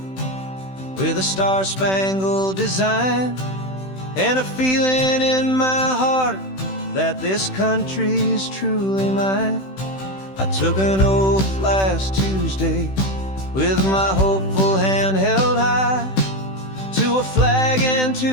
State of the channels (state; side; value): late; right; 16 ms